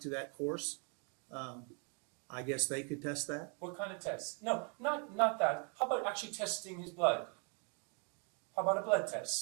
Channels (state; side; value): quieter; left; 37.4 dB